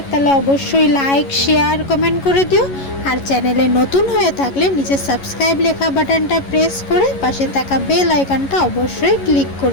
তাহলে অবশ্যই লাইক শেয়ার কমেন্ট করে দিও। আর চ্যানেলে নতুন হয়ে থাকলে নিচে সাবস্ক্রাইব লেখা বাটনটা প্রেস করে পাশে থাকা বেল আইকনটা অবশ্যই ক্লিক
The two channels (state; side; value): late; right; 11 ms